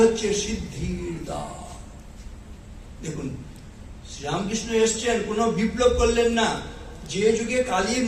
হচ্ছে সিদ্ধির দ্বার। দেখুন, শ্রীরামকৃষ্ণ এসছেন, কোনো বিপ্লব করলেন না। যে যুগে কালী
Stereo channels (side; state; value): both; identical; correlation 1.00